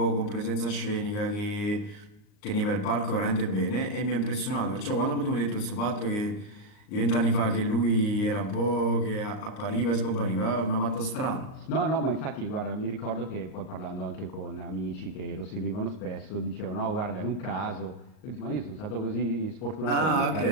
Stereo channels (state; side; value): late; right; 39 ms